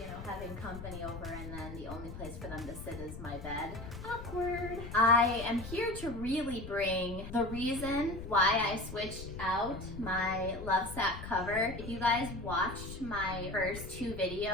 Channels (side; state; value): left; noise; rumble, 10 dB below the sound